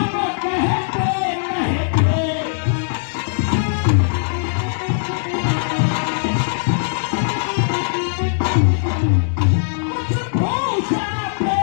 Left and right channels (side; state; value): right; silent; digital silence